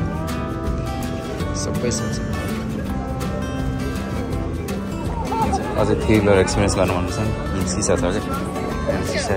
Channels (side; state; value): both; identical; correlation 1.00